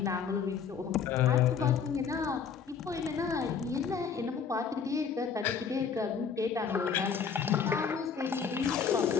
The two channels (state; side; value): quieter; right; 6.6 dB